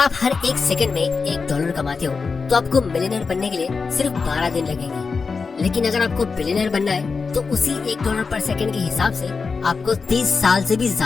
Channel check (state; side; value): quieter; right; 4.8 dB